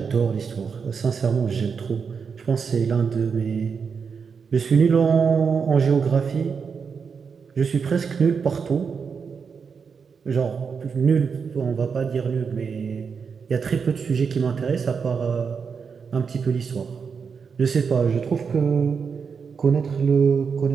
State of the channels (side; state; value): left; quieter; 5.9 dB